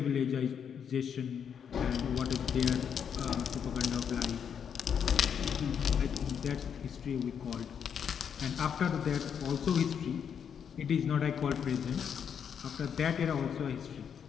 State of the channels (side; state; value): right; quieter; 7.7 dB